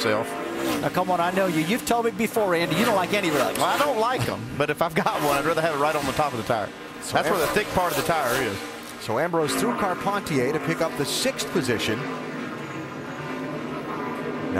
Now, come on, I know you. You've told me before, Andy, you don't like any rubs. Well, I don't like them, but if I've got one, I'd rather have it right on the top of the tire. That's where the thick part of the tire is. So Ambrose through Carpentier to pick up the 6th position.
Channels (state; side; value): identical; both; correlation 1.00